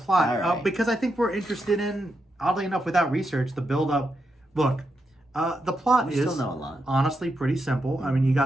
because I think we're interested in, oddly enough, without research, the build up. Look, the plot is honestly pretty simple. I mean, you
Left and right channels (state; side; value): normal; both; correlation 0.84